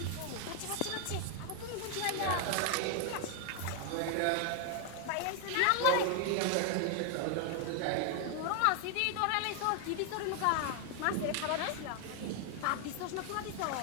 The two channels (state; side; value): different; both; correlation 0.00